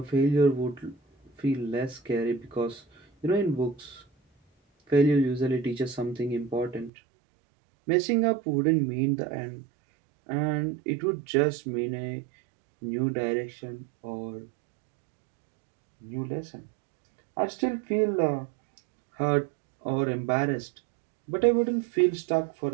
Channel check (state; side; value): drops out; left; at 6.9 s